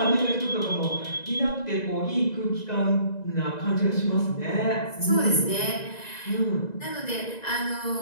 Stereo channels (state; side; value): late; right; 1.9 ms